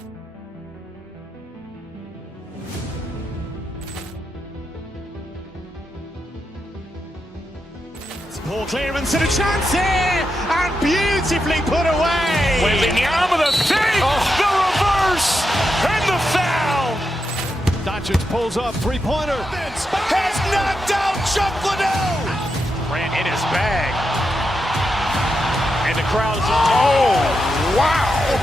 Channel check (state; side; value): normal; both; correlation 0.86